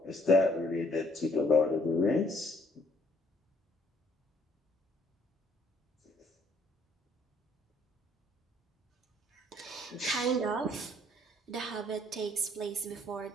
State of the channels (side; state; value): both; normal; correlation 0.65